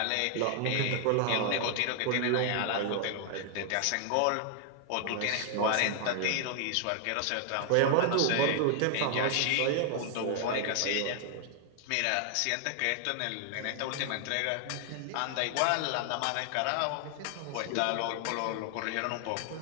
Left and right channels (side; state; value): both; different; correlation 0.00